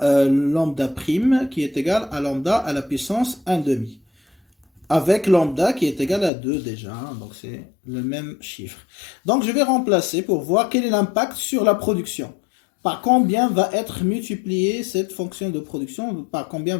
lambda prime qui est égal à lambda à la puissance 1/2. Avec lambda qui est égal à 2 déjà, hein, donc c'est le même chiffre. Donc, je vais remplacer pour voir quel est l'impact sur la production. Par combien va être multipliée cette fonction de production, par combien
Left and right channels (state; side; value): drops out; right; at 6.3 s